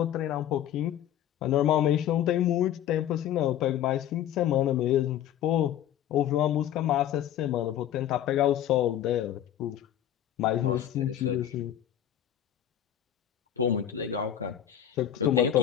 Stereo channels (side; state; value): right; quieter; 11.0 dB